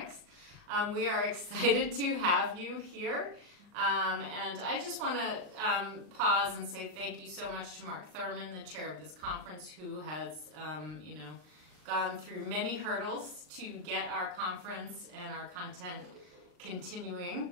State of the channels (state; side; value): late; left; 39 ms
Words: We are excited to have you here. And I just want to pause and say thank you so much to Mark Thirman, the chair of this conference, who has gone through many hurdles to get our conference and our content